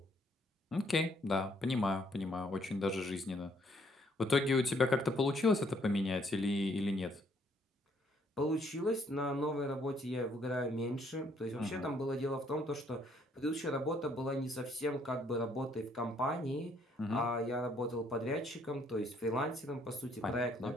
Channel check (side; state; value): both; normal; correlation 0.67